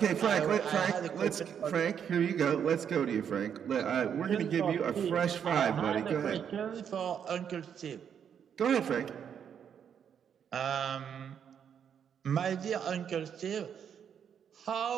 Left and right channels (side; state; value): left; quieter; 8.1 dB